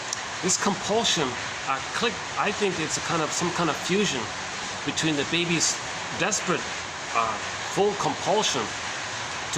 this compulsion. I think it's some kind of fusion between the baby's desperate, full compulsion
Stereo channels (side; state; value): both; identical; correlation 1.00